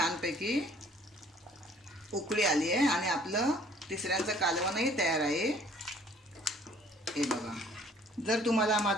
उकळी आली आहे आणि आपलं तिसऱ्यांचं कालवणही तयार आहे. हे बघा. जर तुम्हाला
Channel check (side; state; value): both; normal; correlation 0.57